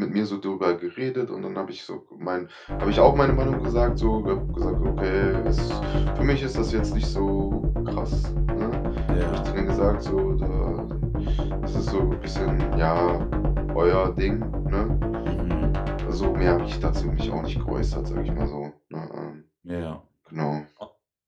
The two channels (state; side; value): identical; both; correlation 1.00